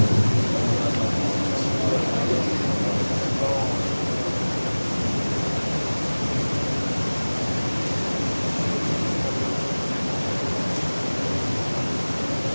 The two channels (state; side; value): inverted; both; correlation -1.00